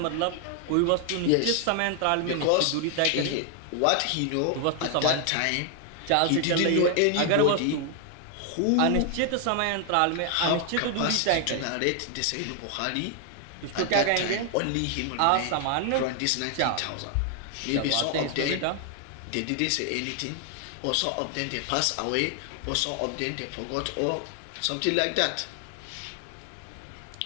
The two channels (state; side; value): different; both; correlation 0.00